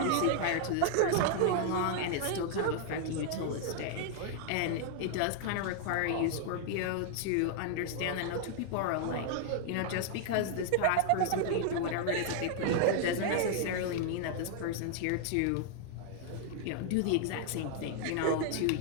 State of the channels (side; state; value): both; different; correlation 0.00